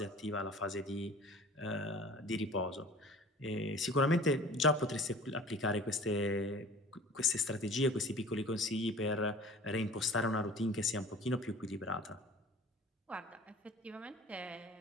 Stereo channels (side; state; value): both; normal; correlation 0.44